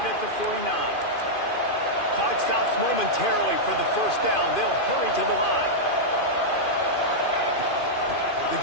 at the 49. Clock stops momentarily for the first down. They'll hurry to the line. The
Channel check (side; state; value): right; late; 2.5 ms